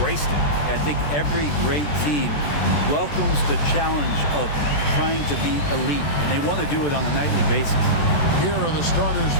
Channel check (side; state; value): right; late; 14 ms